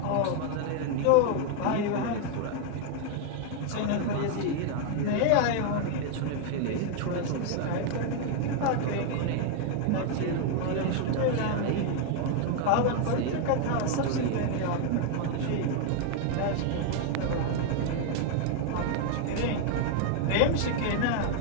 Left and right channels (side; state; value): both; different; correlation 0.00